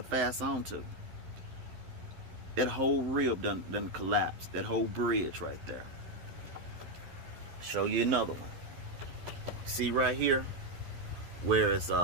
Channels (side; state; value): left; late; 12 ms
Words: fasten onto. That whole rib done collapsed. That whole bridge right there. Show you another one. See right here where it's